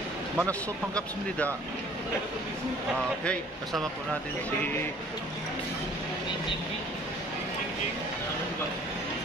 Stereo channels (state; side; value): normal; both; correlation 0.53